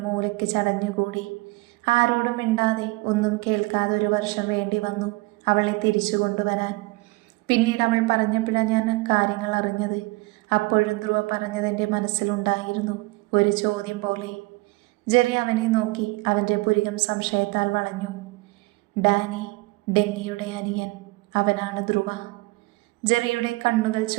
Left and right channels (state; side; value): quieter; left; 23.8 dB